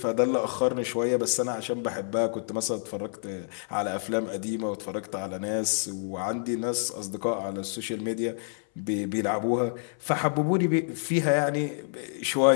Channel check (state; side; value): silent; right; 59 dB below the other